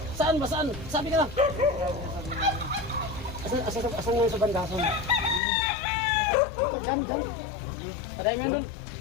Saan ba? Saan? Sabi ka lang. Asan nga sa banda? Asan? Diyan. Patay mo yun dun.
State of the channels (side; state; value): right; drops out; at 5.4 s